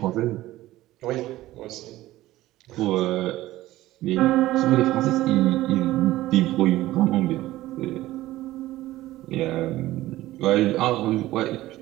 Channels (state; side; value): quieter; left; 16.2 dB